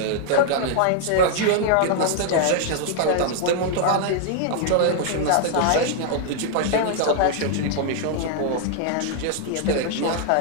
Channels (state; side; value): different; both; correlation -0.01